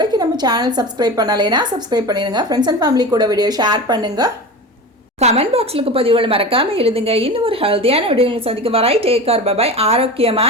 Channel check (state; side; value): normal; both; correlation 0.30